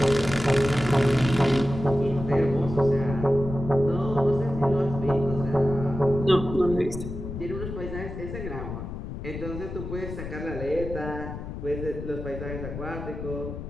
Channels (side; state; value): left; noise; rumble, 8 dB below the sound